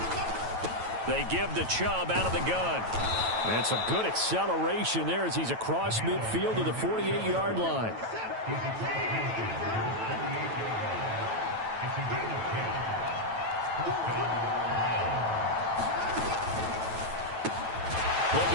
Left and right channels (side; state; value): left; late; 9.1 ms